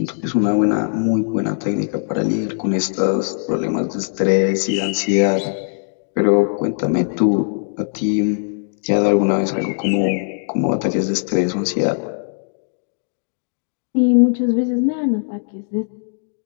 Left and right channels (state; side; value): silent; right; digital silence